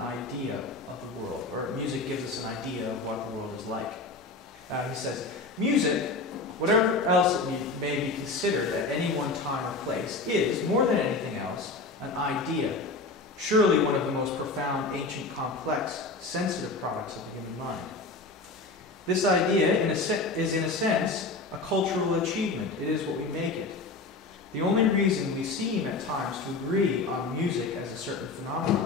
of the world, or music gives us an idea of what the world is like. He says, music, whatever else it may be considered at any one time or place, is, more than anything else, an idea, surely one of the most profound, ancient, complex, sensitive products of the human mind. This idea is, in a sense, a cultural achievement. It is what we make it. The only reason we seem at times to agree on music as a certain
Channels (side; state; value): right; quieter; 3.5 dB